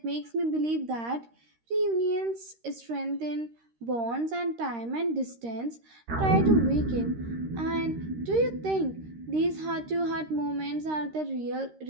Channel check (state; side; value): late; left; 13 ms